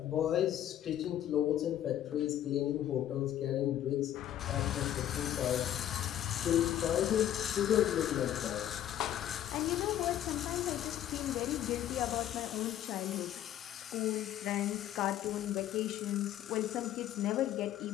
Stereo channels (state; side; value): quieter; right; 11.6 dB